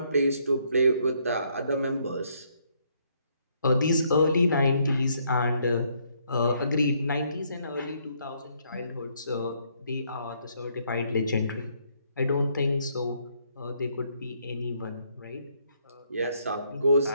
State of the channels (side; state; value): both; inverted; correlation -0.71